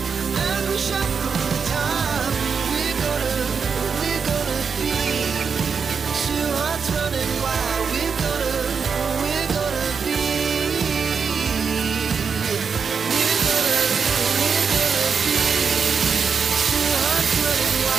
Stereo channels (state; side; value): quieter; left; 5.9 dB